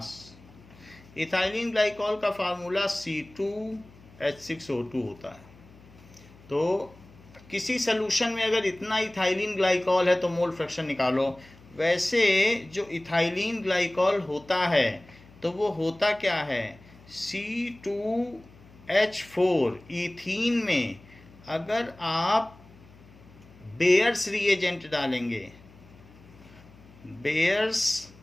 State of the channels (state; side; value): noise; left; hum, 24 dB below the sound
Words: Ethylene glycol का formula C2H6O2 होता है। तो किसी solution में अगर इतना ethylene glycol है तो मोल फ्रैक्शन निकालो। वैसे जो इथाइलिन ग्लाइकॉल होता है तो वो होता क्या है, C2H4 ईथीन में अगर आप बेयर्स रिएजेंट डालेंगे, bears